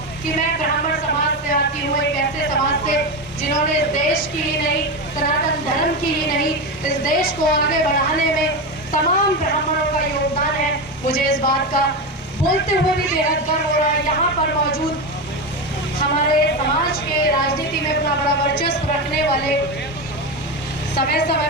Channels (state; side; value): normal; both; correlation 0.17